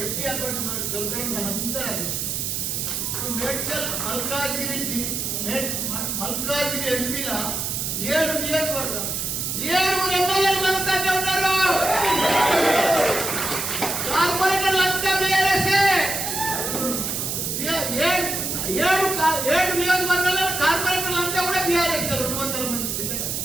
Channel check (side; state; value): right; noise; hiss, 2 dB below the sound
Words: ఎంపీ అకౌంట్ మనకు దొరకడం మనందరూ అదృష్టం. ఇప్పుడు మేడ్చల్ మల్కాజిగిరి ఎంపీల 7 నియోజకవర్గం 7 ఎమ్మెల్యేలు మనతోనే ఉన్నారు. కార్పొరేటర్లు అంతా బీఆర్ఎస్ఏ. 7 నియోజకవర్గాల్లో కార్పొరేటర్లు అంతా కూడా బీఆర్ఎస్. 200 మంది చిల్లర.